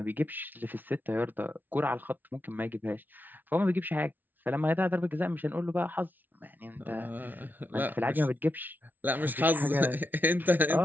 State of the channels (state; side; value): late; left; 0.085 ms